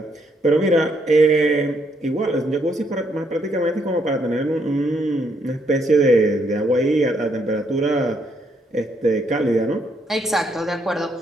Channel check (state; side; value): normal; both; correlation 0.73